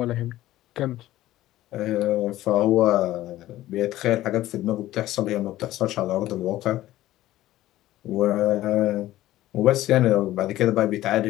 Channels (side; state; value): right; quieter; 15.1 dB